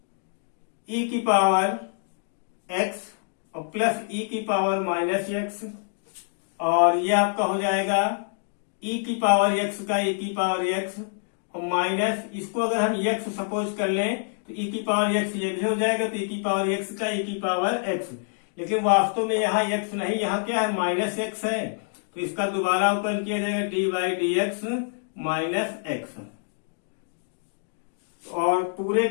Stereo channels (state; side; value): silent; right; digital silence